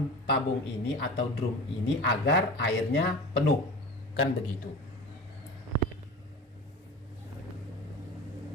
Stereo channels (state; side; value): normal; both; correlation 0.34